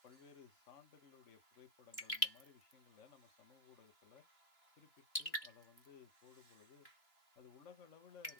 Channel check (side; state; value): right; late; 3.0 ms